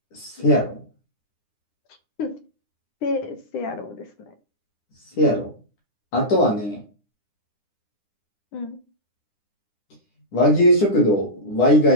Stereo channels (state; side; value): late; right; 9.9 ms